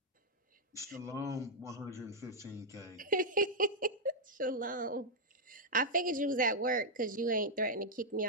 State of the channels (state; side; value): normal; both; correlation -0.04